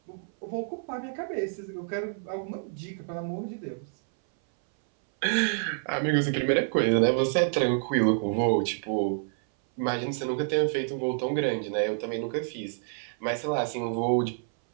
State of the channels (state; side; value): silent; left; 58 dB below the other